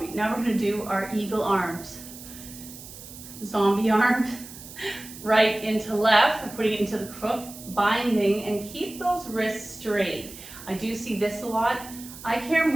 Now we're gonna do our eagle arms. Zombie arms, right into left, we're putting it into the crook, binding, and keep those wrists straight. I do see this a lot. I care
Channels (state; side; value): noise; right; hiss, 15 dB below the sound